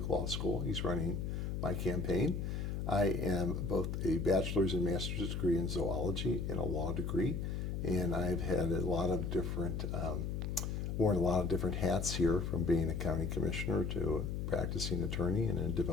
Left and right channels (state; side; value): noise; left; hum, 2 dB below the sound